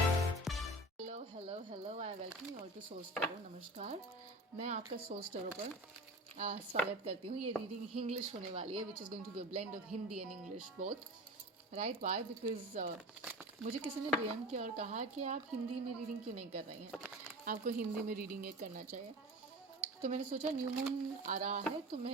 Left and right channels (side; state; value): both; normal; correlation 0.34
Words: hello I welcome you all to source tarot. नमस्कार, मैं आपका source tarot पर स्वागत करती हूँ। ये रीडिंग इंग्लिश होने वाली है which is going to be a blend of Hindi and English both, right? Why? Because मुझे किसी ने डीएम किया और कहा कि आप हिंदी में रीडिंग क्यों नहीं कर रही हैं, आपको हिंदी में रीडिंग एक करना चाहिए। तो मैंने सोचा न्यू मून आ रहा है तो